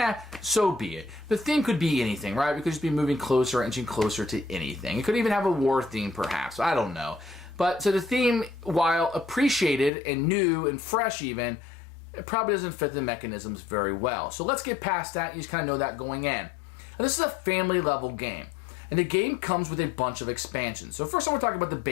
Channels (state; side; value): drops out; right; at 9.9 s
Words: So be it. The theme could be anything, right? We could just be moving closer, inching closer to anything. It could even have a war theme, perhaps. I don't know. But so the theme, while appreciated and new and fresh even, it probably doesn't fit the mechanisms very well. So let's get past that. You just kind of know that going in. Now, this is a family level game. And the game comes with a bunch of expansions. So first I want to talk about the